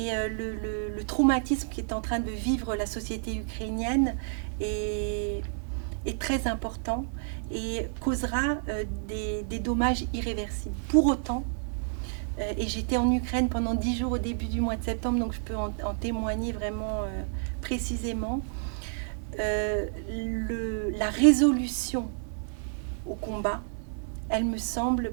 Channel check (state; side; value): silent; left; digital silence